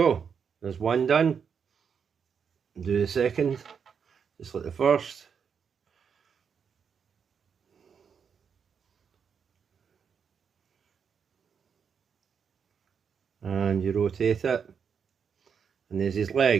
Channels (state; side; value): quieter; left; 6.8 dB